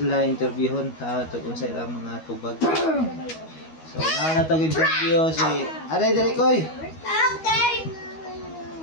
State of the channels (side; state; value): right; late; 12 ms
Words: interviewon tungkol sa ilang mga tubag. So na tong interview si Aray diri koy.